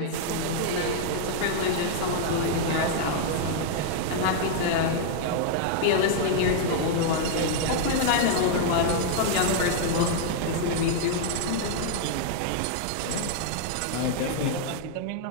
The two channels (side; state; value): both; different; correlation -0.01